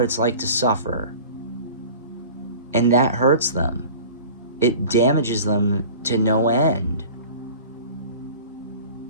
it's like to suffer. And that hurts them. It damages them to no end.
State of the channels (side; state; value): both; inverted; correlation -0.41